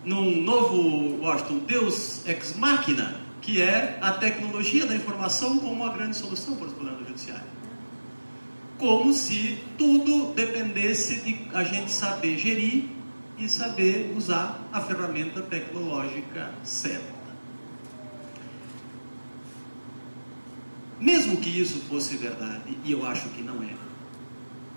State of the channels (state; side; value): inverted; both; correlation -1.00